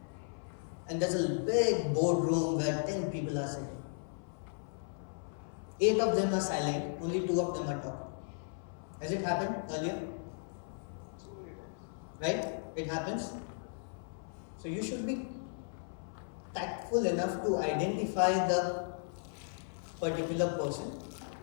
and there's a big boardroom where 10 people are sitting? 8 of them are silent, only 2 of them are talking. Has it happened earlier? Right? It happens. So you should be tactful enough to identify the particular person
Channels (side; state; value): right; silent; 54 dB below the other